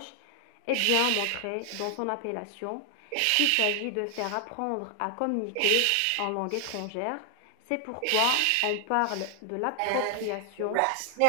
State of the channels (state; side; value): different; both; correlation 0.00